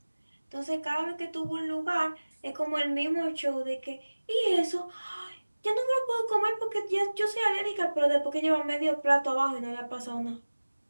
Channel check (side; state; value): both; inverted; correlation -1.00